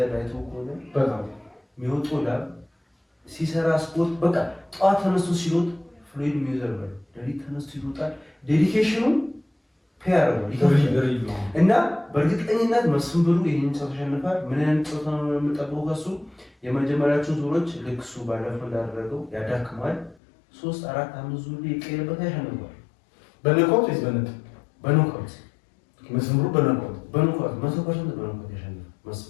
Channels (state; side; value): drops out; right; at 20.2 s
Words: አይተው ከሆነ በጣም የሚወጣው ላብ ሲሰራ ስፖርት በቃ ጠዋት ተነስቶ ሲሮጥ ፍሎይድ ሜይዌዘር ነው። ሌሊት ተነስቶ ይሮጣል። ዴዲኬሽኑ ፔር ነው እና በእርግጠኝነት መስፍን ብሩ ይሄን ጨዋታ ያሸንፋል። ምን አይነት ጨዋታ ነው የምጠብቀው ከሱ? የመጀመሪያዎቹን ዙሮች ልክ እሱ ባለፈው እንዳደረገው ያዳክማል። 3 4 5 ዙር ይቀየርበት ያሸንፋል። በነቆት ወይስ በነጥብ? በኖካውት መስፍን ብሩ በነቆት 100% በኖካውት ያሸንፋል